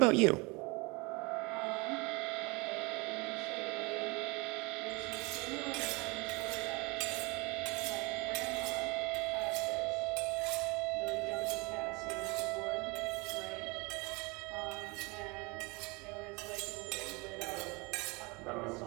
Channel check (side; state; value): left; quieter; 27.1 dB